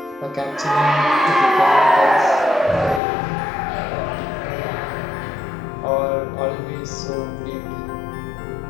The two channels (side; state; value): right; drops out; at 3.0 s